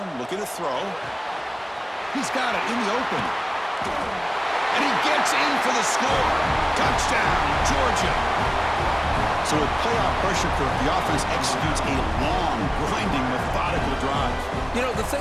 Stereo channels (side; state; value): both; identical; correlation 1.00